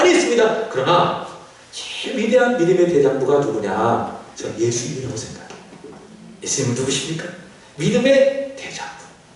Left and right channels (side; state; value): both; identical; correlation 1.00